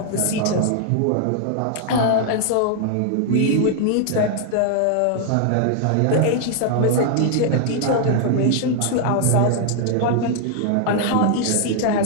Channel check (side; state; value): both; different; correlation 0.00